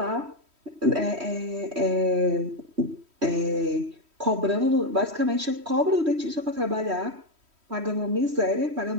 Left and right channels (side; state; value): left; late; 3.1 ms